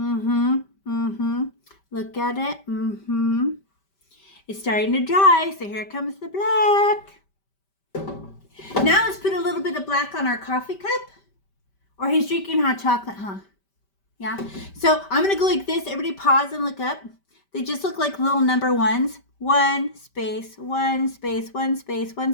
Look at it. It's starting to dry, so here comes the black. Now let's put a little bit of black on our coffee cup. Or he's drinking hot chocolate, huh? Yeah. So I'm going to go like this. Everybody pause and look up. They just look like little number ones. 1 space, 1 space, 1 space, 1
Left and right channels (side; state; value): right; late; 5.1 ms